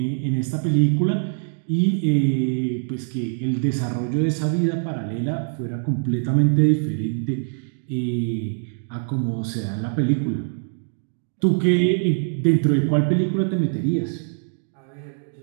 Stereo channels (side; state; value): left; silent; digital silence